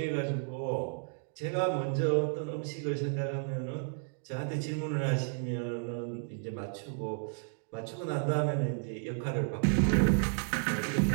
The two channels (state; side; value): silent; left; 56 dB below the other